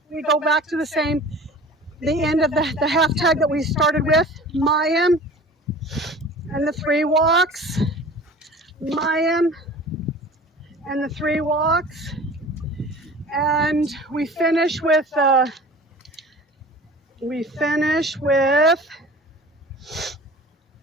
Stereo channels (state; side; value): normal; both; correlation 0.42